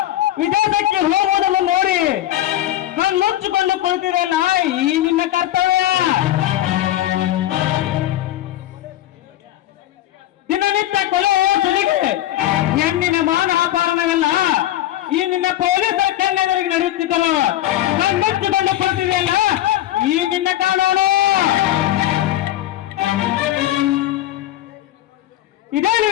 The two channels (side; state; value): right; quieter; 13.9 dB